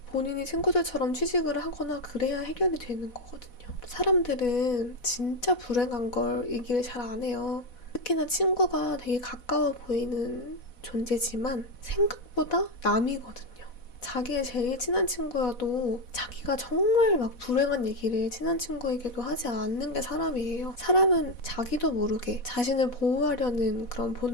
본인이 친구들처럼 취직을 하거나 그래야 해결이 되는 거거든요. 사람들은 진짜 불행한 걸 얘기를 잘 안 해요. 특히나 친구가 되게 가까워 보이는 존재지만 생각보다 남이거든요. 자기의 제일 친한 친구여도 자기가 정말 막 불행한 얘기를 친한 친구에게도 하지 않는 게 사람이에요. 사람은 자기도 모르게 자신을 보호하려는 그런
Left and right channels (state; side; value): late; right; 4.1 ms